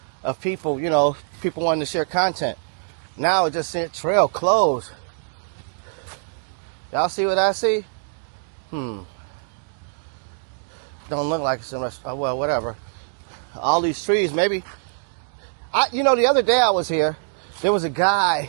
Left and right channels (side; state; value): left; silent; digital silence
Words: of people, you know, people wanting to share content. Now it just said trail closed. Y'all see what I see? Don't look like so much. Oh, well, whatever. All these trees, maybe. You know, the other day I was here, there was a